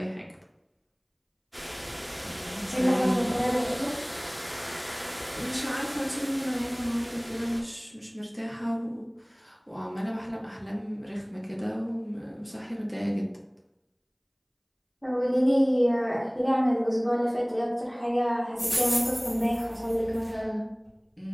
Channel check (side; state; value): both; identical; correlation 1.00